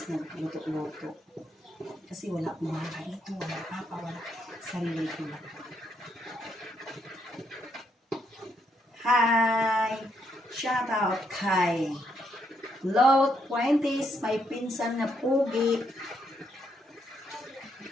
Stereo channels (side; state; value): both; normal; correlation 0.76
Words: nagluto-luto. Kasi wala akong mga ito, wala papa, wala sarili ko lang. Hi! Shout out kay Low 20s, may pinsan na pugi.